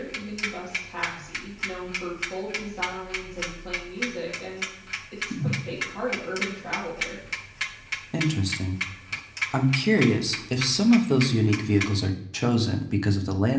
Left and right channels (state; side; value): identical; both; correlation 1.00